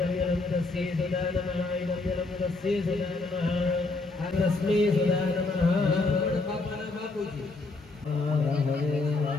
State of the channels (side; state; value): right; quieter; 3.5 dB